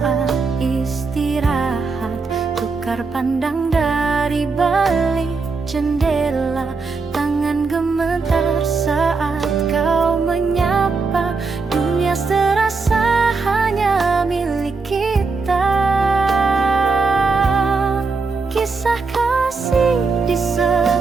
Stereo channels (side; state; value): left; quieter; 4.4 dB